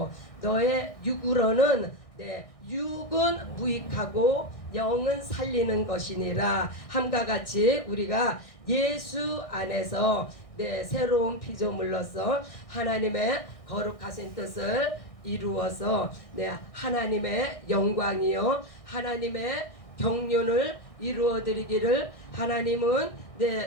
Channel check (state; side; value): late; right; 1.6 ms